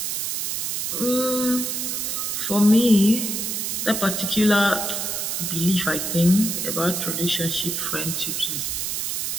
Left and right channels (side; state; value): right; noise; hiss, 1 dB below the sound